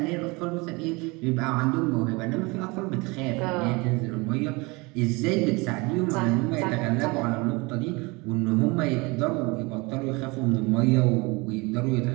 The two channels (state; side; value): quieter; left; 25.9 dB